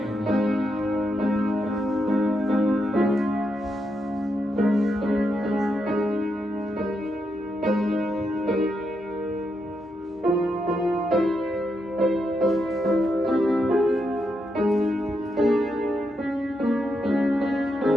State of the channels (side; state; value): both; normal; correlation 0.82